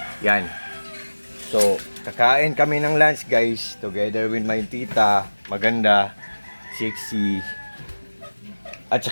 Yan. So, kakain kami ng lunch guys, together with my tita. Maganda, sexy. At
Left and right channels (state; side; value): inverted; both; correlation -1.00